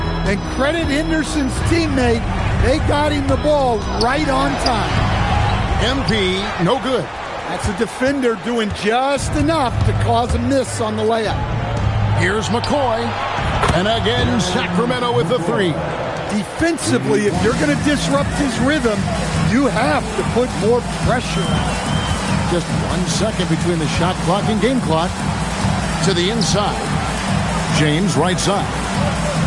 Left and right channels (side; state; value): both; identical; correlation 1.00